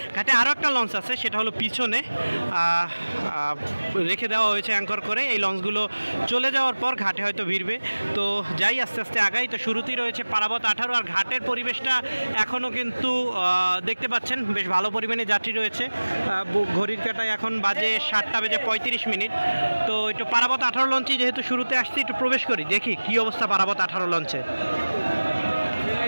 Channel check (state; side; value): inverted; both; correlation -1.00